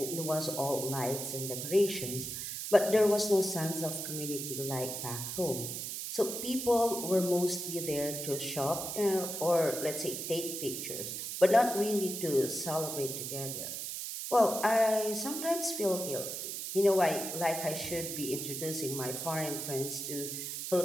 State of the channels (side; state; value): right; noise; hiss, 5 dB below the sound